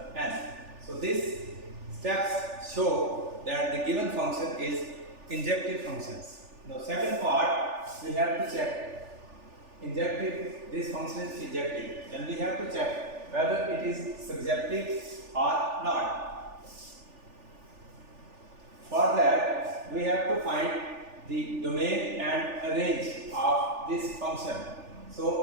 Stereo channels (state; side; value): late; left; 3.4 ms